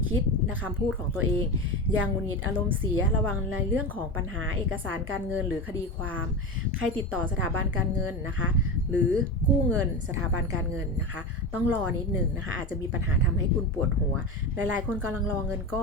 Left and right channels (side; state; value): both; normal; correlation 0.22